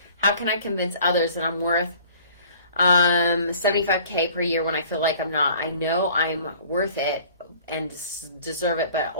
How can I convince others that I'm worth 75K per year when I feel like I'm not? I know I'm worth it and deserve it, but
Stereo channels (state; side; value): inverted; both; correlation -0.51